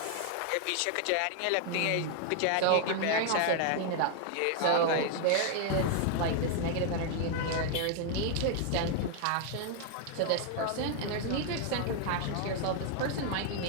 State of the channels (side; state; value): both; different; correlation 0.00